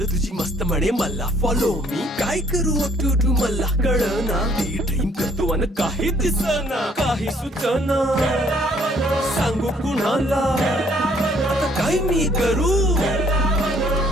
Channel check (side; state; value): both; normal; correlation 0.63